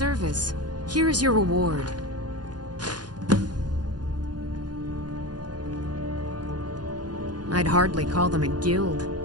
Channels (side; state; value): left; late; 0.69 ms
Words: Here is your reward. I'd hardly call them a guild.